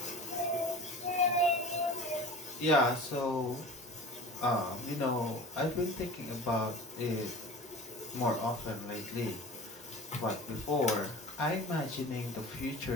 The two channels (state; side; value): normal; both; correlation 0.39